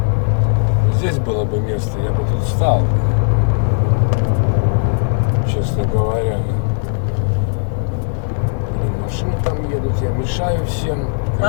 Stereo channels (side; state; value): right; silent; 68 dB below the other